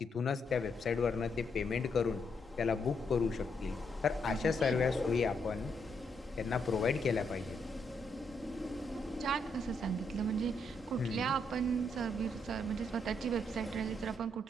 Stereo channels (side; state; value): both; normal; correlation 0.77